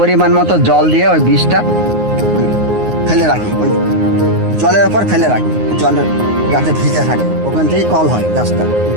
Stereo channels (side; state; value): left; late; 9.5 ms